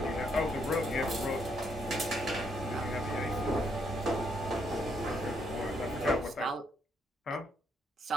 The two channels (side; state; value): both; normal; correlation 0.74